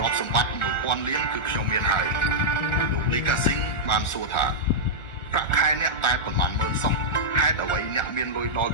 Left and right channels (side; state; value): right; late; 1.4 ms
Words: រព្យសម្បត្តិ1000 លានគឺខ្ញុំមានហើយលោកលីកាស៊ីងបានសួរថាប្រាក់ខែអ្នកតែប៉ុន្មានម៉ឺនសោះហេតុអ្វីអ្នកមានលុយដល់